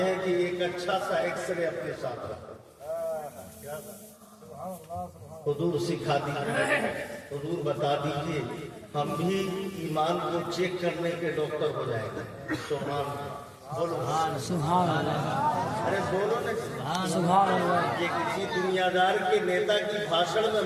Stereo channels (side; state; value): both; identical; correlation 1.00